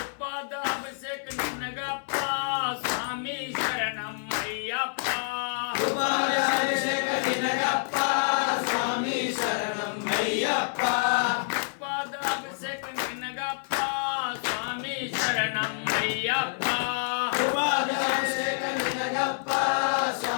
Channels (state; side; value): silent; right; 60 dB below the other